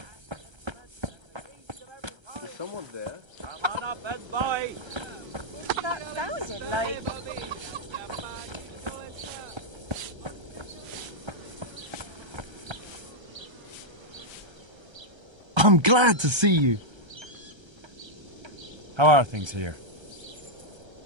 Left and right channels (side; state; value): left; late; 1.3 ms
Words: Is someone there? Come on up and buy. That sounded like... I'm glad to see you. How are things here?